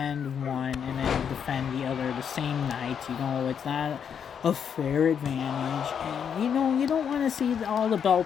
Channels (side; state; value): right; quieter; 7.6 dB